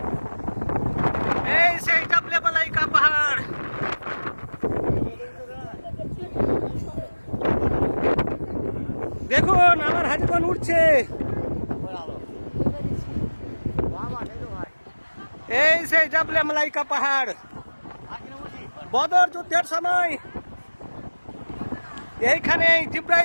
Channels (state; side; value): inverted; both; correlation -1.00